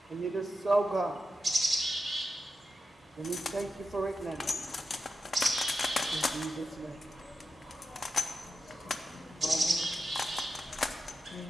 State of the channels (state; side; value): normal; both; correlation 0.90